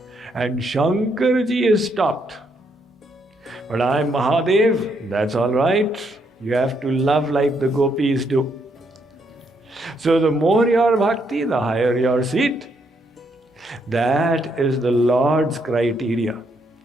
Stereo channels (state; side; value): normal; both; correlation 0.75